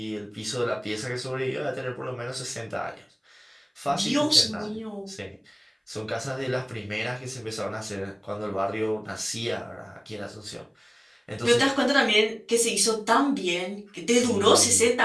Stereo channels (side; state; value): both; identical; correlation 1.00